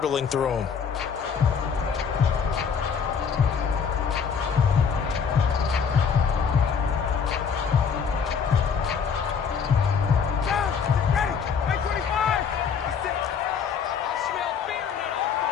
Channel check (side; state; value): right; quieter; 6.5 dB